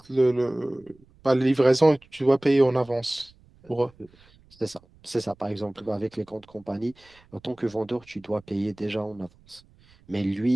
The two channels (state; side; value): noise; right; rumble, 29 dB below the sound